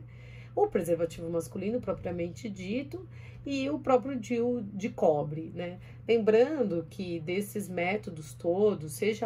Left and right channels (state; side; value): identical; both; correlation 1.00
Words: O preservativo masculino propriamente dito e o próprio DIU de cobre, né? Lembrando que desses métodos todos,